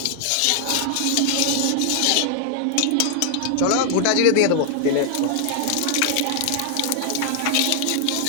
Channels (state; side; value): different; both; correlation 0.00